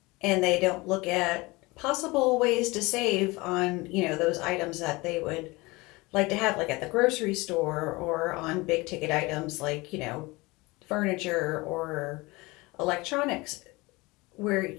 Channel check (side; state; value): right; quieter; 23.3 dB